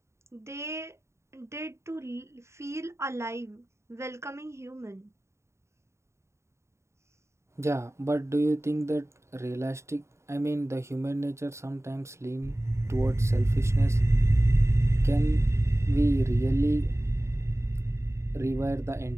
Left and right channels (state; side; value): late; left; 0.14 ms